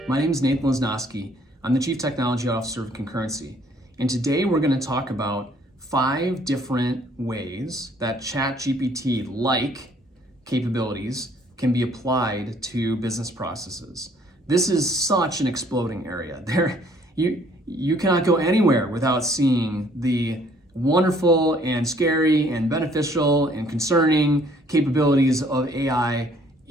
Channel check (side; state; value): both; normal; correlation 0.61